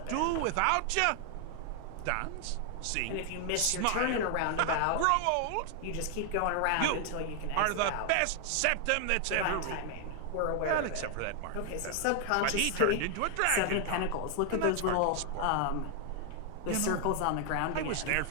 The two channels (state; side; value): different; both; correlation 0.00